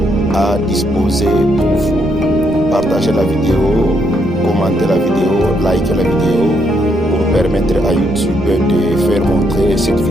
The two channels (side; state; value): right; noise; hum, 25 dB below the sound